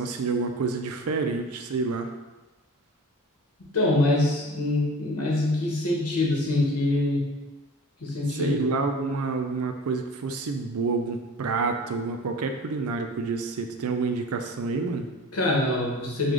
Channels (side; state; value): both; normal; correlation 0.40